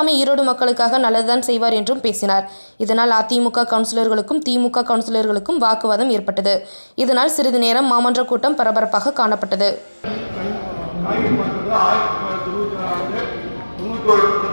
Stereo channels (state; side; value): inverted; both; correlation -1.00